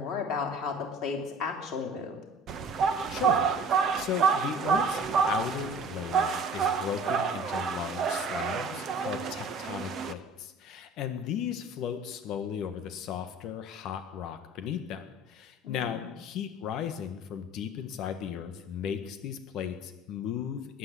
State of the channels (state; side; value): normal; both; correlation 0.46